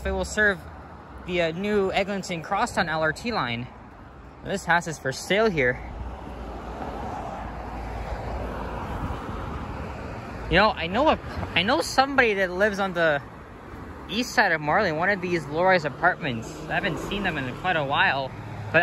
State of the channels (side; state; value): both; identical; correlation 1.00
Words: it will serve the new Eglinton Crosstown LRT line. This house is for sale here. You know, I know somebody that lives on the east side of Marlee, one of these low-rise apartments. I haven't seen them in quite a while, but